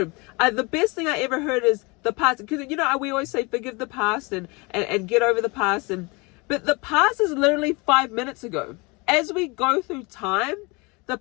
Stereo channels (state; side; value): quieter; right; 27.3 dB